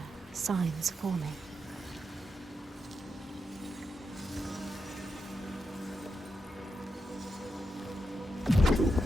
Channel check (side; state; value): both; normal; correlation 0.86